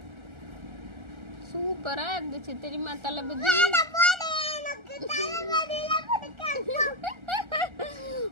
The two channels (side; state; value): left; late; 1.3 ms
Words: சூப்பரா இருந்துச்சு தெரியுமா தளபதி.